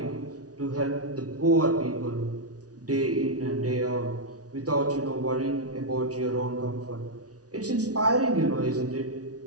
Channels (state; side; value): late; left; 0.68 ms